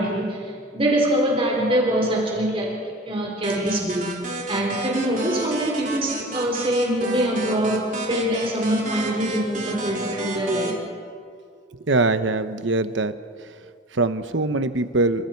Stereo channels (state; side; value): normal; both; correlation 0.38